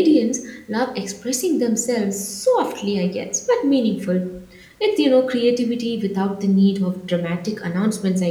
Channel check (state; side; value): identical; both; correlation 1.00